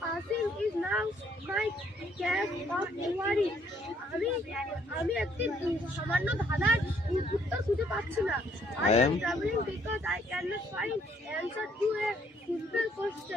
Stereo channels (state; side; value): normal; both; correlation 0.67